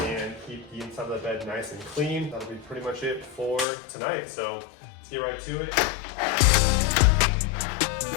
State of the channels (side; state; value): right; drops out; at 3.7 s